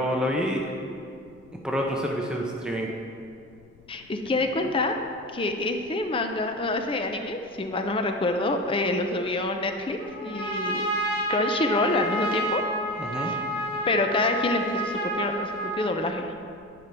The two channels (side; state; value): left; noise; rumble, 27 dB below the sound